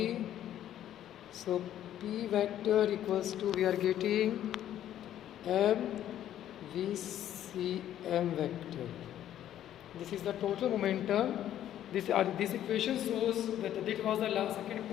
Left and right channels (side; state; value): right; quieter; 11.5 dB